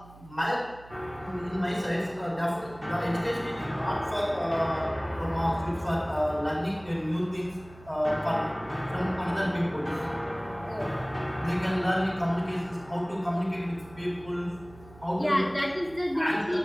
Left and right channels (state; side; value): noise; right; hum, 21 dB below the sound